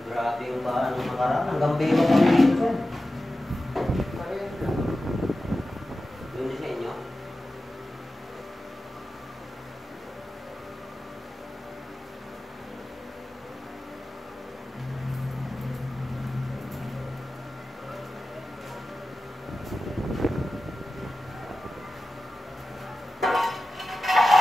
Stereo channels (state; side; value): normal; both; correlation 0.94